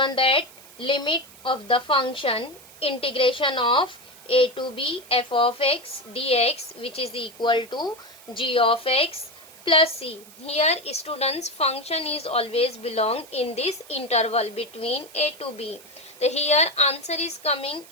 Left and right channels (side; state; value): right; noise; hiss, 21 dB below the sound